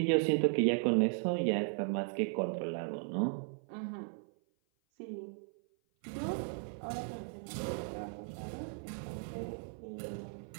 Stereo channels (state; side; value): silent; left; 53 dB below the other